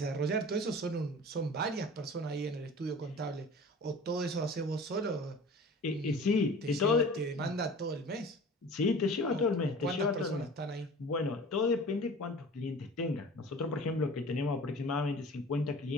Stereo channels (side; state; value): both; normal; correlation 0.41